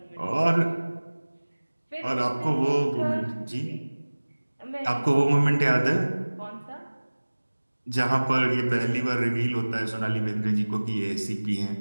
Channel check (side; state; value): both; inverted; correlation -1.00